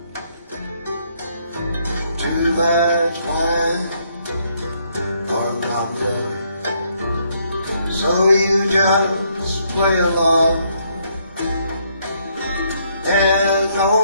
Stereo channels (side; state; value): both; inverted; correlation -0.71